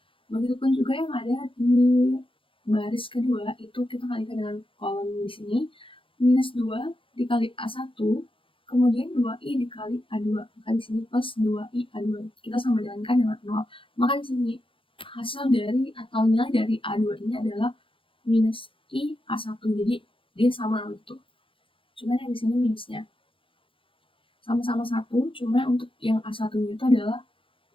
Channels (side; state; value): right; late; 0.25 ms